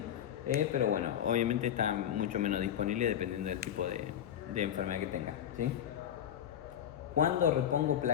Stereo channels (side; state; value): right; quieter; 10.0 dB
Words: Pero bueno, obviamente está mucho menos disponible dependiendo del tipo de enfermedad que tenga, ¿sí? ¿Cuándo repongo